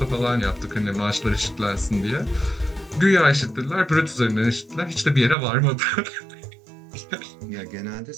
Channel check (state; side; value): drops out; left; at 5.4 s